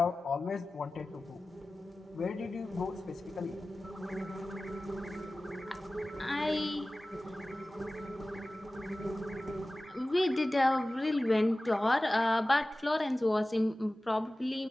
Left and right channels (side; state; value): both; normal; correlation 0.97